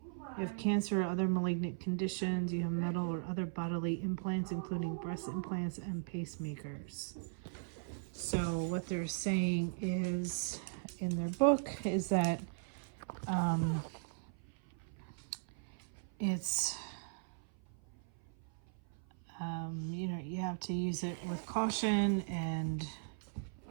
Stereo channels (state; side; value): silent; left; 52 dB below the other